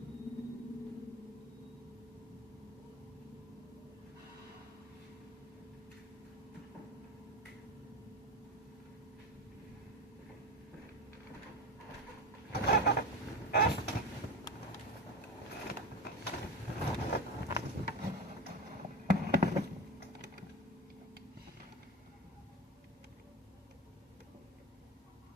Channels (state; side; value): normal; both; correlation 0.23